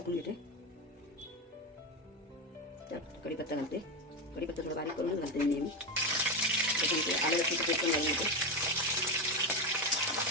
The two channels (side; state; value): both; normal; correlation 0.13